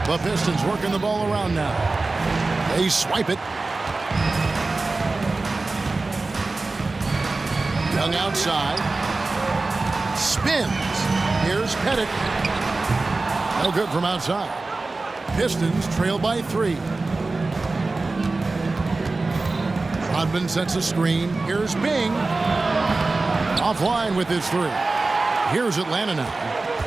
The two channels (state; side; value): quieter; left; 3.5 dB